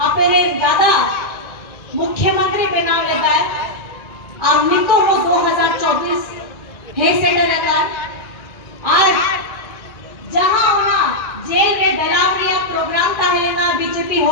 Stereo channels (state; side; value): late; right; 1.6 ms